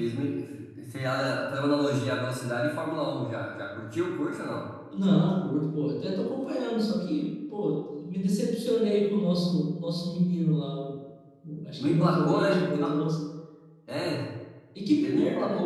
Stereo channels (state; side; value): identical; both; correlation 1.00